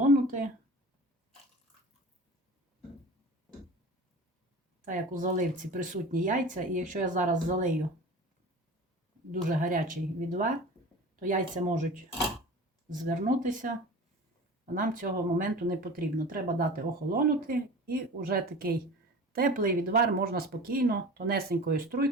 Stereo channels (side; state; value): both; normal; correlation 0.36